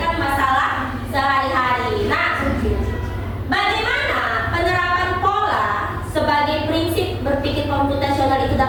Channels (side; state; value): both; identical; correlation 1.00